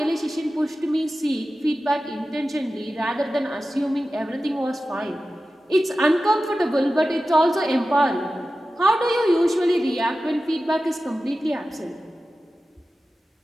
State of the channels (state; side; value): normal; both; correlation 0.94